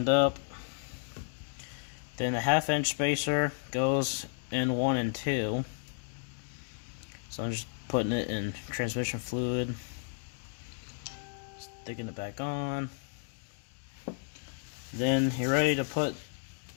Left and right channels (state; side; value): silent; right; digital silence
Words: up. Then the 1/2-inch spacer goes in 1 and 2. So I'm just putting it in transmission fluid, sticking it back on. Then you're ready to put